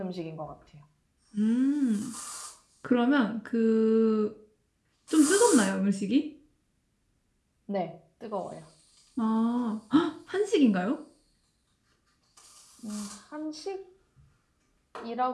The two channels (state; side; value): identical; both; correlation 1.00